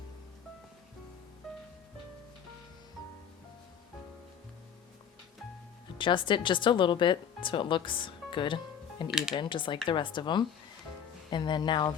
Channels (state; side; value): quieter; right; 8.1 dB